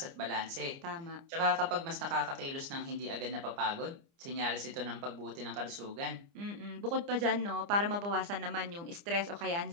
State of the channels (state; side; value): late; left; 29 ms